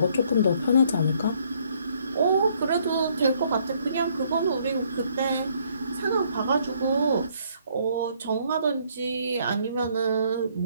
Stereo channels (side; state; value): both; inverted; correlation -0.66